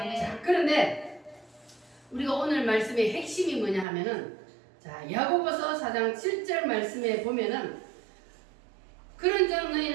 자, 그런데 우리가 오늘 말씀의 핵심이 뭐냐 하면은, 자, 야고보서 4장 7절 말씀에 보면은, 그런즉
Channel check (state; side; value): drops out; left; at 3.9 s